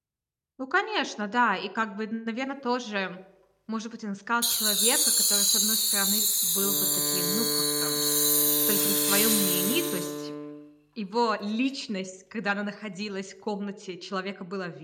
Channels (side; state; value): both; identical; correlation 1.00